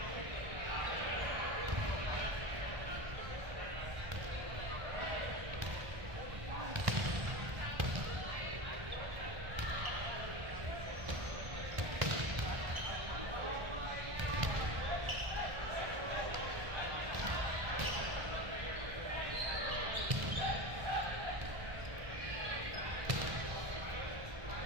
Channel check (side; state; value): left; late; 1.3 ms